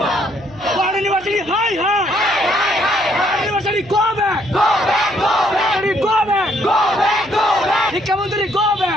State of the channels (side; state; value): right; noise; hum, 22 dB below the sound